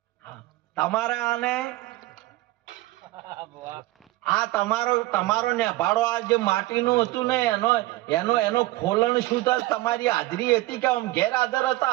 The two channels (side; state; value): left; quieter; 18.4 dB